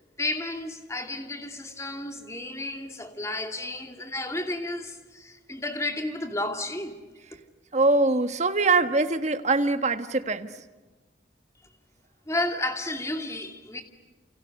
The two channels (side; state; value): both; normal; correlation 0.13